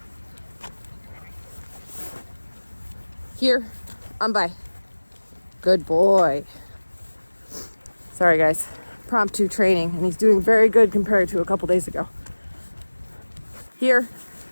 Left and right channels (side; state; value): both; inverted; correlation -1.00